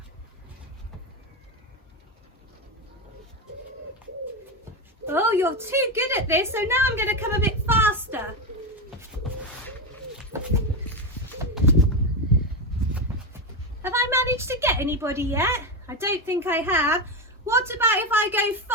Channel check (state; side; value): normal; both; correlation 0.13